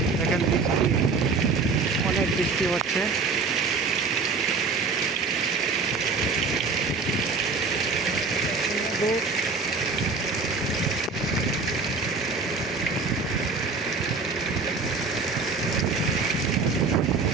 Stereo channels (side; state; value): left; quieter; 4.4 dB